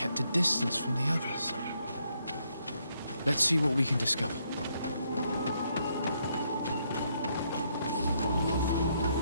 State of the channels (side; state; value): both; inverted; correlation -0.74